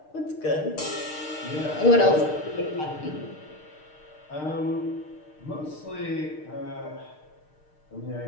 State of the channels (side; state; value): right; late; 6.6 ms